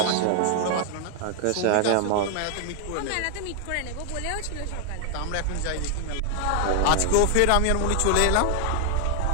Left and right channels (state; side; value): different; both; correlation 0.00